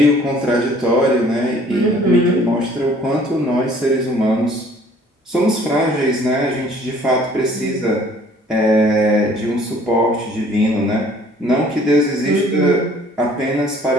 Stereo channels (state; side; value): normal; both; correlation 0.55